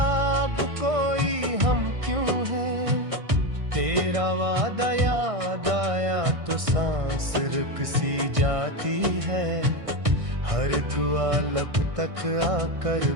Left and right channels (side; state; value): left; late; 1.6 ms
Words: अब कोई हम क्यों है। तेरा वादा याद आया तो सांस रुक सी जाती है, हर दुआ लब तक आकर